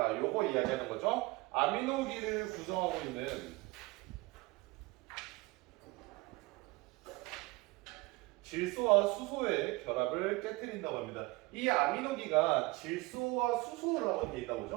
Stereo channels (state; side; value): quieter; left; 22.6 dB